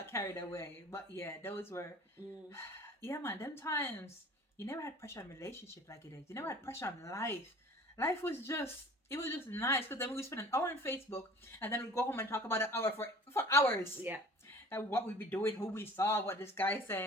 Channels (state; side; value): normal; both; correlation 0.46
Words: carried away. But yeah, those were yeah, man, them times you never had pressure on relationship like it is. You never had pressure on life. Life was just nice because then we would spend an hour on Facebook and then we'd go home and talk about an hour for hours. Yeah. And what we'd be doing, who we saw, what this guy